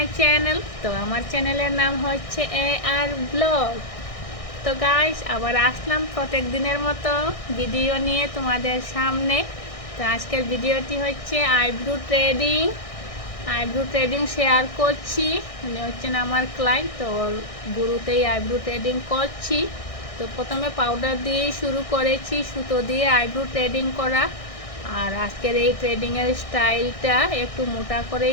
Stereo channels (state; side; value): late; right; 1.6 ms